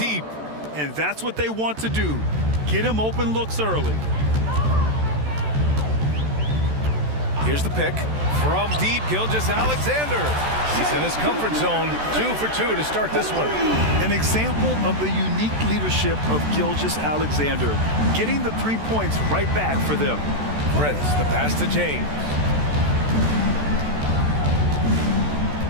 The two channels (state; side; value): late; left; 14 ms